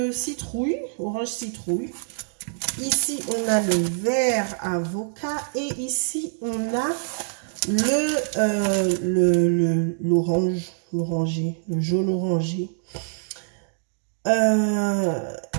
citrouille, orange citrouille. Ici, on a le vert avocat et ici, on a l'orangé, le jaune orangé.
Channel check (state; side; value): silent; left; digital silence